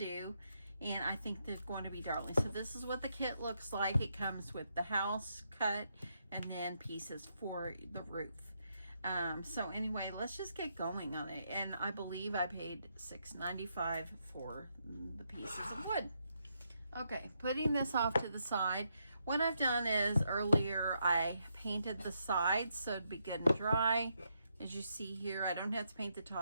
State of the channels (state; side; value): inverted; both; correlation -0.79